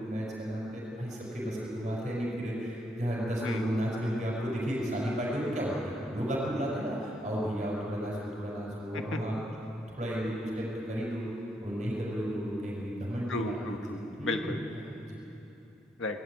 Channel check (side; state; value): both; normal; correlation 0.78